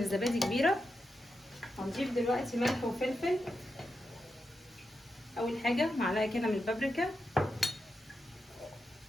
كبيره. هنضيف دلوقتي ملح وفلفل. اول حاجه معلقه كده من البابريكا،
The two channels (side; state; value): both; normal; correlation 0.87